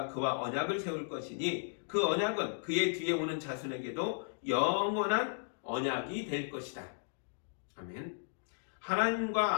그와 언약을 세울 것이니 그 언약은 그의 뒤에 오는 자손에게도 영원한 언약이 될 것이다. 아멘.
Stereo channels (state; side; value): silent; right; digital silence